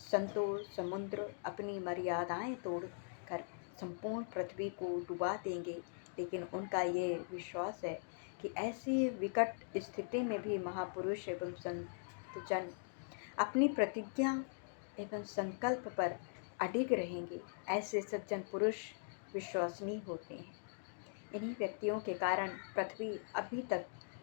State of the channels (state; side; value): silent; right; digital silence